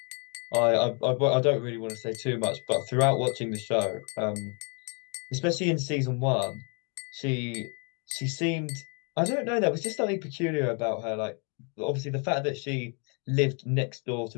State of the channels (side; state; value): right; quieter; 36.3 dB